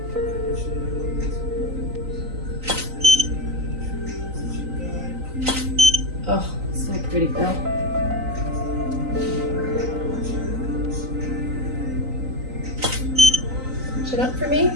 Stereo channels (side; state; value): left; late; 3.9 ms